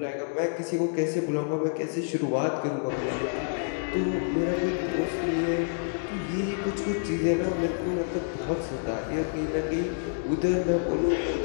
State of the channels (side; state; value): right; silent; digital silence